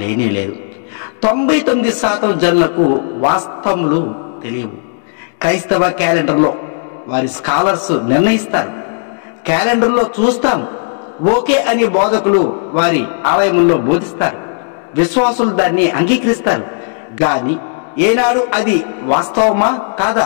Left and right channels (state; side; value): silent; right; digital silence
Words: లేనేలేదు. 99% జనులకు వాస్తవములు తెలియవు. క్రైస్తవ క్యాలెండర్లో వారి స్కాలర్స్ నిర్ణయిస్తారు. క్యాలెండర్లో చూస్తాం, ఓకే అని బోధకులు వారి ఆలయముల్లో బోధిస్తారు. విశ్వాసులు దాన్ని అంగీకరిస్తారు. గాని ఏనాడు అది వాస్తవమా కాదా,